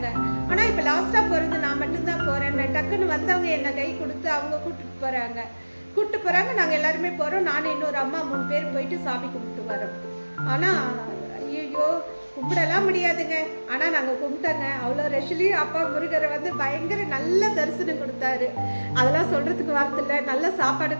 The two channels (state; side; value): inverted; both; correlation -1.00